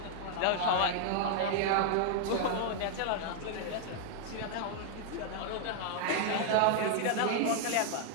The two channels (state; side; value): different; both; correlation 0.00